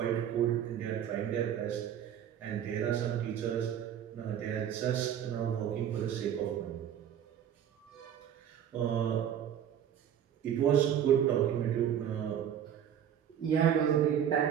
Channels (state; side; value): quieter; left; 9.5 dB